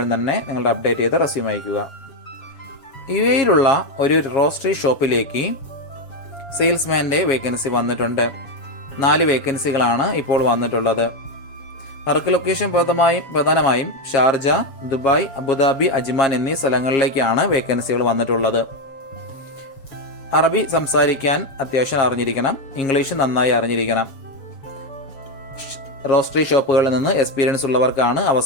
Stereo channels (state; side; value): late; right; 7.4 ms